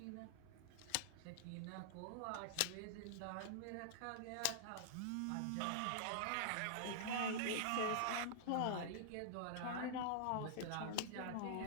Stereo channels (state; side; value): different; both; correlation -0.01